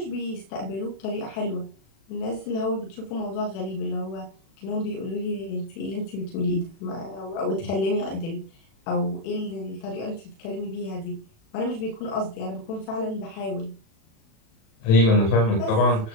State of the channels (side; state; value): right; late; 36 ms